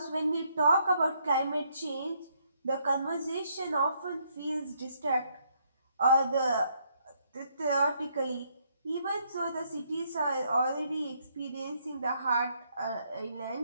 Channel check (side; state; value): both; inverted; correlation -0.72